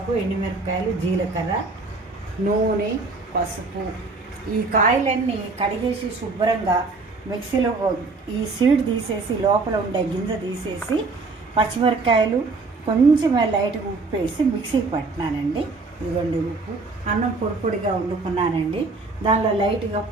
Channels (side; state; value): left; quieter; 3.7 dB